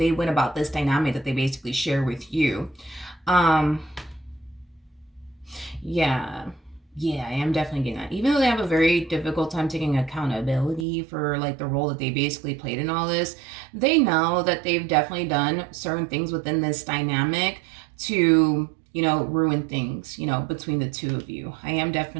went about this dynamic that they basically share with you. Yeah, I am definitely getting that. Even though they have a very difficult time taking accountability for like the role that they basically played in all this, they know that they've definitely done certain things within this dynamic to, ruin things, between the two of you. I am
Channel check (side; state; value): left; drops out; at 10.9 s